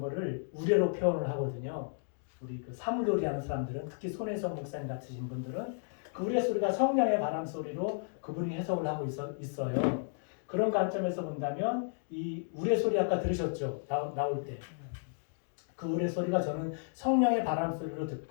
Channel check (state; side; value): silent; right; digital silence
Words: 우레로 표현을 하거든요. 우리 그 사물놀이 하는 사람들은 특히 손혜성 목사님 같으신 분들은 그 우레 소리가 성령의 바람 소리로 그분이 해석을 하고 있어요. 그런 관점에서 본다면 이 우레 소리 아까 들으셨죠? 나올 때. 그 우레 소리가 저는 성령의 바람 소리로